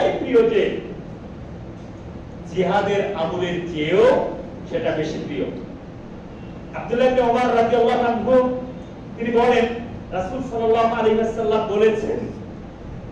প্রিয় যে জিহাদের আমলের চেয়েও সেটা বেশি প্রিয়। আব্দুল্লাহ ইবনে ওমর রাদিয়াল্লাহু আনহু তিনি বলেন, রাসূল সাল্লাল্লাহু আলাইহি ওয়াসাল্লাম বলেছেন,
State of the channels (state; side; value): identical; both; correlation 1.00